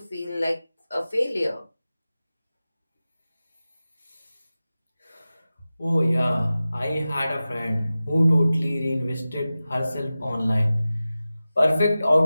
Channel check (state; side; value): inverted; both; correlation -0.95